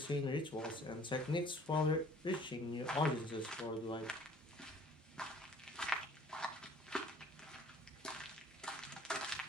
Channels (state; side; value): normal; both; correlation 0.53